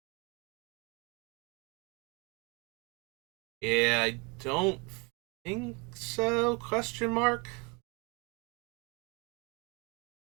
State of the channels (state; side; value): quieter; left; 30.0 dB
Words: Yeah, I don't think so, question mark.